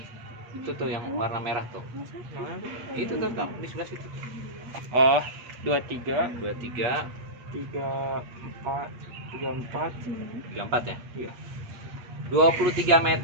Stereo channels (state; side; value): late; left; 8.6 ms